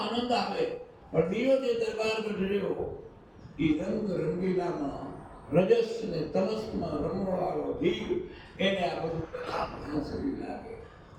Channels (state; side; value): identical; both; correlation 1.00